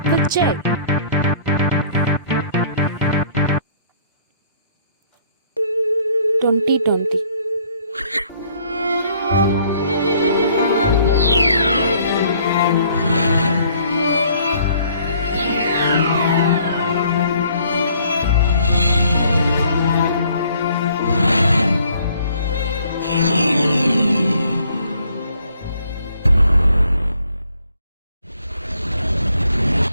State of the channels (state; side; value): inverted; both; correlation -0.61